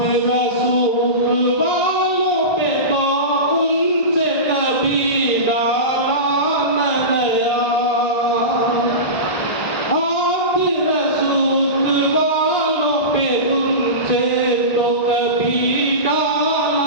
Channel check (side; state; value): right; late; 1.5 ms